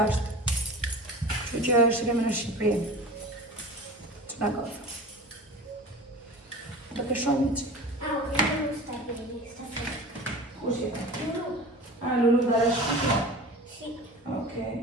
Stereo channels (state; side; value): normal; both; correlation 0.36